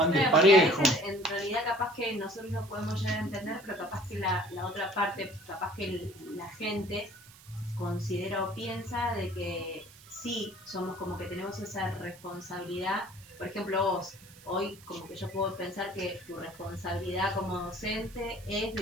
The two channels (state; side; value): noise; right; hiss, 22 dB below the sound